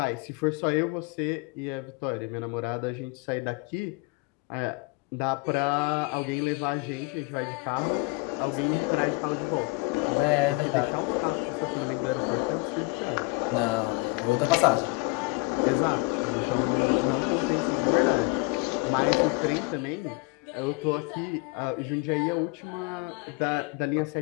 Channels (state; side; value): quieter; right; 25.5 dB